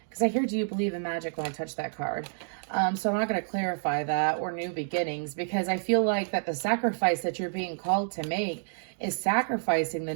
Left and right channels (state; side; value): silent; left; digital silence